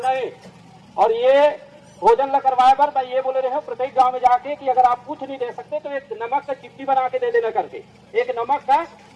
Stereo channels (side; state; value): both; identical; correlation 1.00